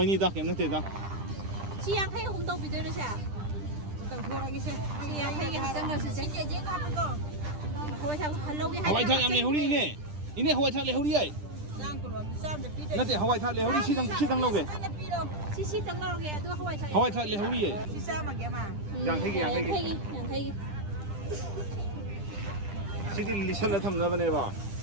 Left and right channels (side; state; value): left; late; 10 ms